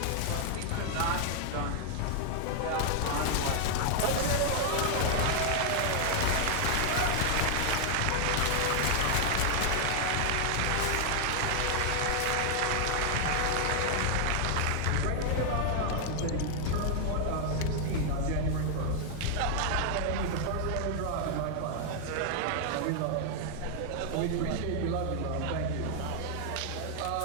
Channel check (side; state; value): both; different; correlation 0.00